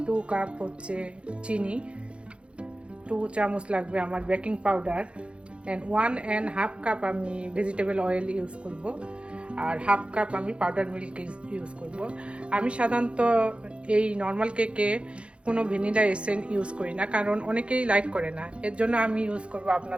2 কাপ হচ্ছে চিনি, 2 চামচ লাগবে আমার বেকিং পাউডার, অ্যান্ড 1.5 কাপ আমি ভেজিটেবল অয়েল ইউজ করব, আর 1/2 কাপ আমি পাউডার মিল্ক ইউজ করব। আমি সাধারণত এই নর্মাল কেকে কোনো ভ্যানিলা এসেন্স ইউজ করি না, কারণ অনেকেই লাইক করে না। এর জন্য আমি ইউজ করব,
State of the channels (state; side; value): late; left; 0.059 ms